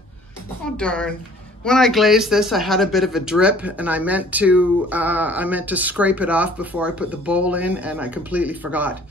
Oh, darn. When I glazed this, I had a bit of a drip, and I meant to scrape it off before I put the bowl in, and I completely forgot.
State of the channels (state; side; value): normal; both; correlation 0.53